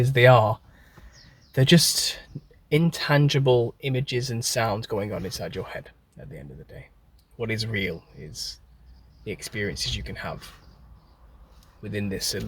they are, they're just intangible images and sounds going on inside your head at the end of the day. What is real is the experiences you can have within this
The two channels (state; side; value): identical; both; correlation 1.00